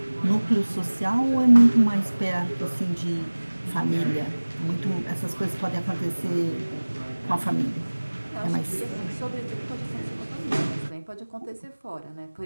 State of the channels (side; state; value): both; inverted; correlation -1.00